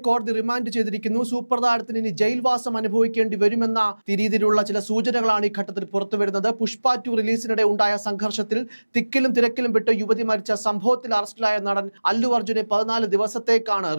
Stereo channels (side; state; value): both; inverted; correlation -1.00